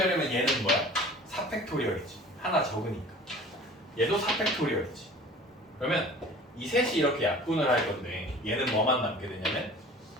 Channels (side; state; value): both; normal; correlation 0.44